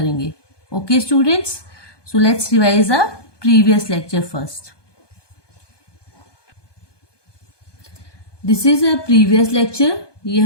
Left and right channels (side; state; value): right; late; 1.2 ms